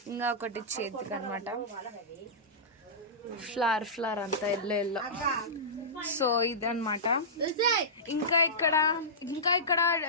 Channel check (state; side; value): normal; both; correlation -0.18